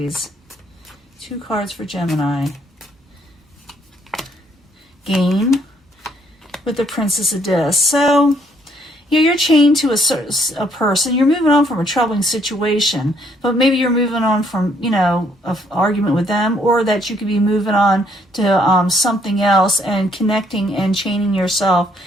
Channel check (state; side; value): normal; both; correlation 0.68